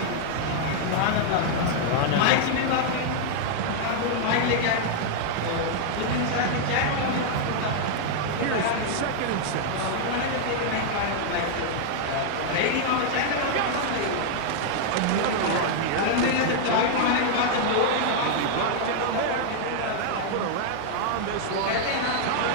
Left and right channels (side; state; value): both; different; correlation -0.01